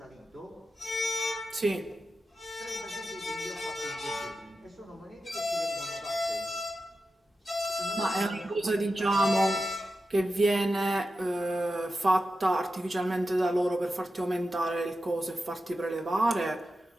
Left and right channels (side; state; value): both; normal; correlation 0.91